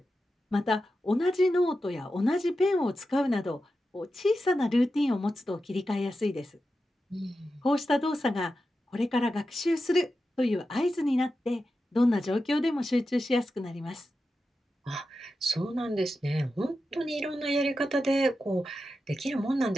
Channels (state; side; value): normal; both; correlation 0.90